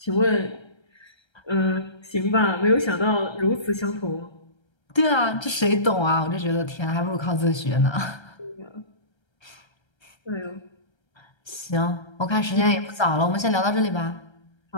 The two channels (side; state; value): right; late; 1.3 ms